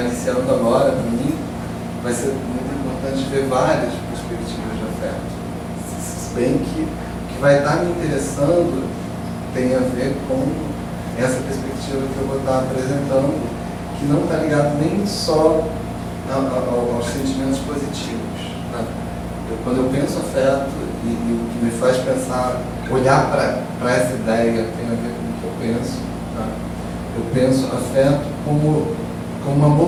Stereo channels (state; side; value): identical; both; correlation 1.00